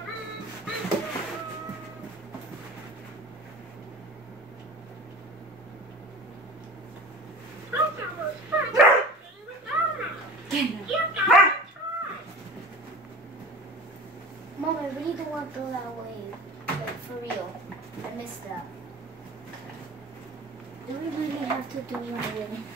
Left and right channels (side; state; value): both; normal; correlation 0.39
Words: Mom, I really don't want to throw that away. Like, for real. I missed that. Do we really have to throw it away?